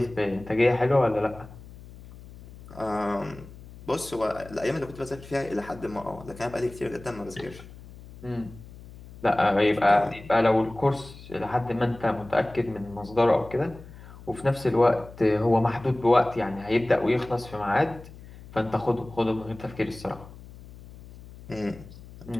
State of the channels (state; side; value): noise; left; hum, 18 dB below the sound